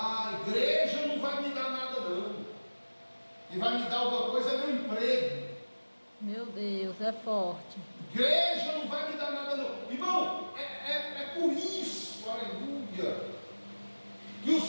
igreja não vai me dar nada não. E vai me dar alguma coisa é meu emprego. Meu Deus, é forte. Igreja não vai me dar nada não. Irmão, é por isso, aleluia, que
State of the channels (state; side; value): inverted; both; correlation -1.00